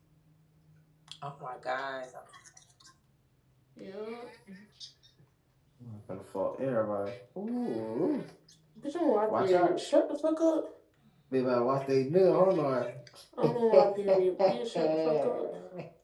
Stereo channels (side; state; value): both; identical; correlation 1.00